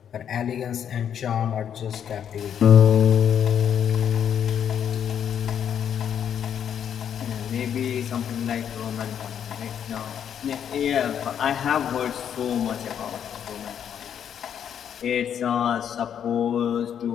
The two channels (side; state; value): right; quieter; 8.8 dB